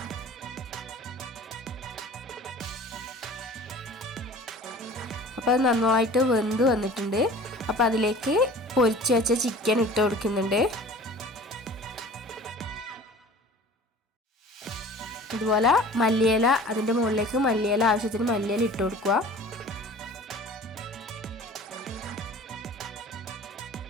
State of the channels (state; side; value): normal; both; correlation 0.44